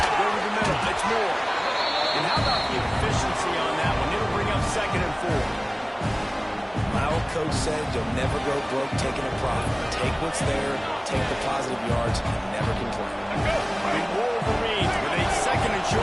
over the middle. It's Moore. And how about the efficiency on that one? It'll bring up 2nd and 4. My old coach said you'll never go broke taking a profit. Take what's there, take the positive yards, and never complain. The Wolverines with a 2nd and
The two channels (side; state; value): both; identical; correlation 1.00